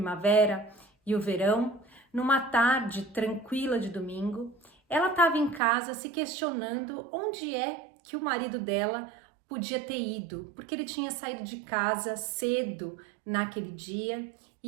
e o verão, numa tarde tranquila de domingo, ela estava em casa se questionando onde é que o marido dela podia ter ido, porque ele tinha saído de casa cedo naquele dia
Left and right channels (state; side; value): drops out; left; at 5.6 s